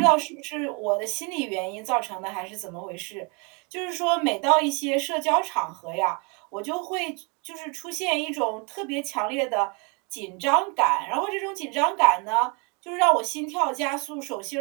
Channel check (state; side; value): quieter; left; 32.8 dB